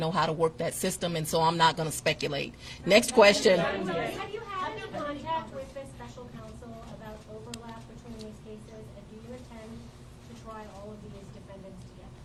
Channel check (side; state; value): both; identical; correlation 1.00